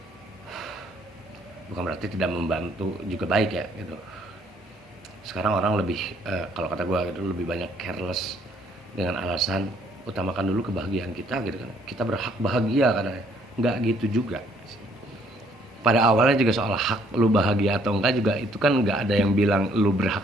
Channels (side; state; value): both; normal; correlation 0.65